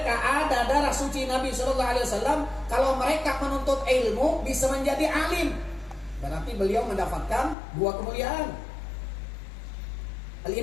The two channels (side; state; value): right; drops out; at 7.6 s